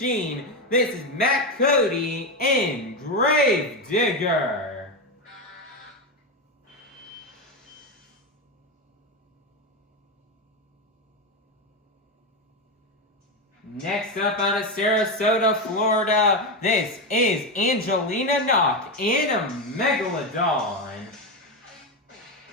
This is Matt Cody and Gravedigger. Next up out of Sarasota, Florida, this is Angelina, Nock and a Megalodon.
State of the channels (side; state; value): both; normal; correlation 0.12